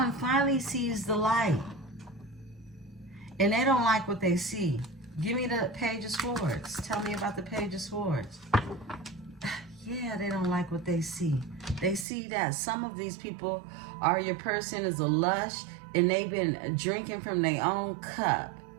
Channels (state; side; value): drops out; left; at 12.1 s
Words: finally sees the light, and they don't like what they see. Give me the Page of Swords. Tell me about the Page of Swords. Yeah, they don't like what they see. They see that some of these people are, your person is a lush, and they've been drinking from their own cup.